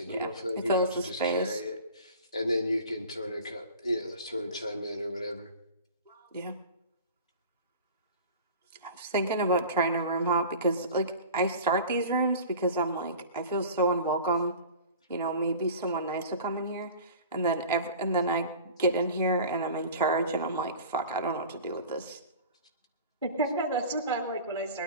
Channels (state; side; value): inverted; both; correlation -0.39